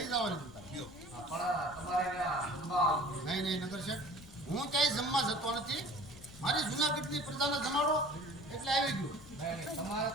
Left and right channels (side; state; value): left; noise; rumble, 18 dB below the sound